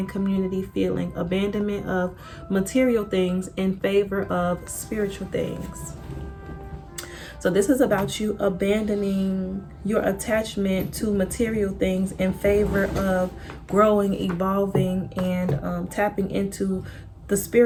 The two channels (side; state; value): both; identical; correlation 1.00